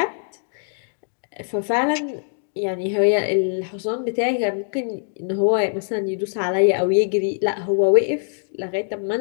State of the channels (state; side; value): silent; right; digital silence